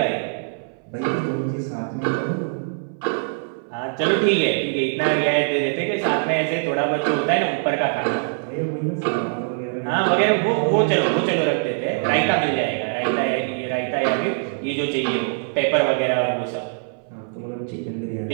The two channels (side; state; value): left; silent; 60 dB below the other